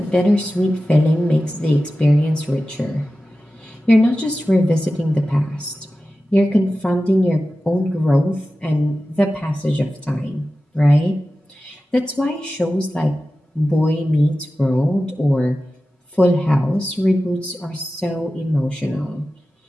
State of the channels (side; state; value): both; normal; correlation 0.94